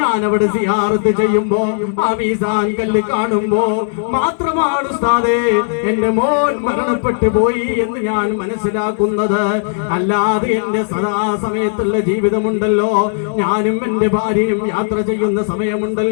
അവിടെ സിയാറത്ത് ചെയ്യുമ്പോ ആ മീസാൻ കല്ല് കാണുമ്പോ മാത്രമാണ് ഉസ്താദേ എന്റെ മോൻ മരണപ്പെട്ടു പോയി എന്ന് ഞാൻ മനസ്സിലാക്കുന്നത്. അല്ലാതെ എന്റെ സദാസമയത്തുള്ള ജീവിതമുണ്ടല്ലോ, ഞാനും എന്റെ ഭാര്യയും യാത്ര ചെയ്യുന്ന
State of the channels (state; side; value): silent; right; digital silence